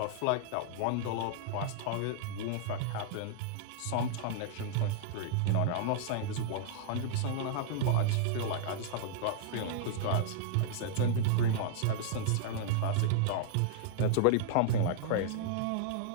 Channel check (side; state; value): both; different; correlation -0.01